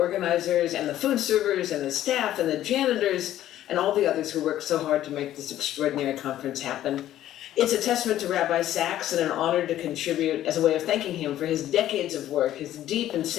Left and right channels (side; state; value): right; quieter; 12.8 dB